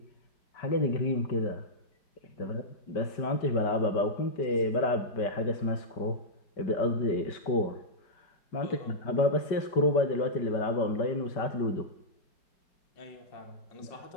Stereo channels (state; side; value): late; right; 5.2 ms